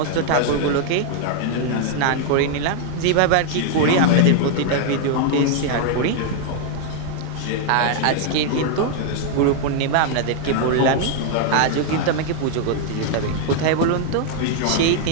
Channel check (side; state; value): both; different; correlation 0.00